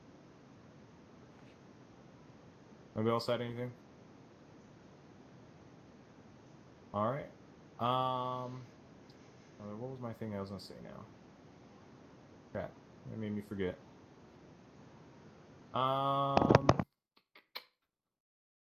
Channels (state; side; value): identical; both; correlation 1.00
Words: Nobody else had anything? Alright. What was my thing I was gonna say now? Crap. That made me forget. Yeah,